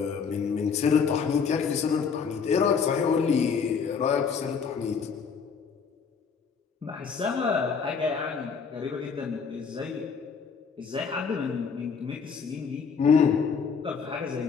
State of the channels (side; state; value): right; quieter; 5.9 dB